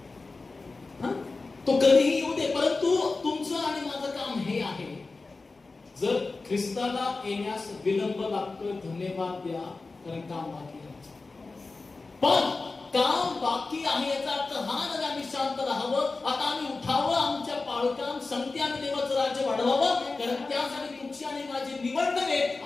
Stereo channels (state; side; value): quieter; right; 3.7 dB